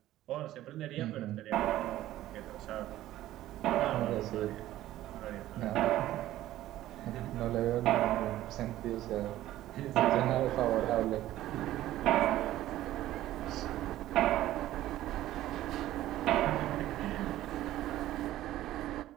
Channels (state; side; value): quieter; left; 14.4 dB